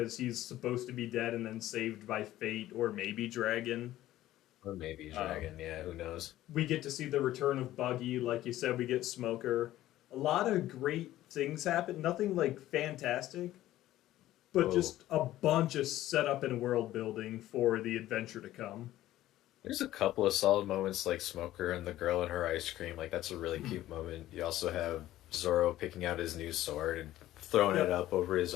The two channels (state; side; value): quieter; right; 14.5 dB